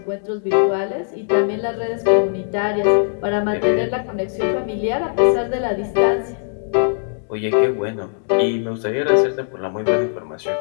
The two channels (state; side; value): silent; right; digital silence